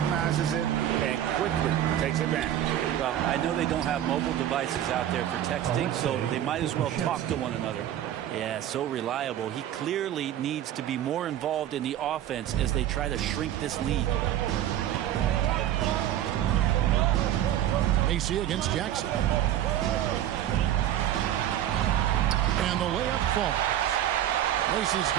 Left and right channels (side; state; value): left; quieter; 11.7 dB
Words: it and quickly takes advantage. Well, I know they don't have mobile devices out there for texting, so they might as well talk to one another. Yeah, so reliable. He clearly needs to be more involved in the offense as they try to shrink this lead. Macy against Jackson. And the layup falls. Macy's